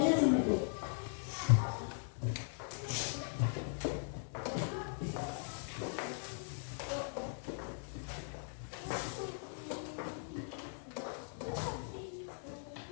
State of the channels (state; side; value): silent; right; digital silence